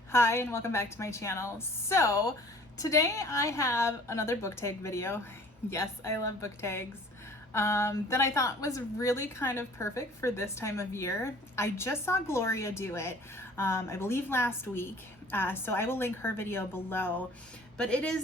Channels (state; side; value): normal; both; correlation 0.50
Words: Hi and welcome back to my channel. So today I have another book tag video. Yes, I love book tags. That I thought was really kind of perfect for this time of year. I just saw Gloria do it, I believe last week, so I will link her video below. But it